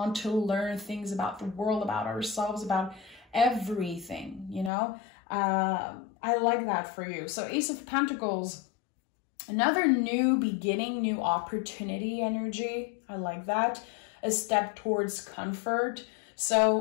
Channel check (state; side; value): drops out; right; at 4.7 s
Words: to learn things about the world, about ourselves, about everything, you know. I like that for you. So Ace of Pentacles, another new beginning, new opportunity energy. I like that. A step towards comfort.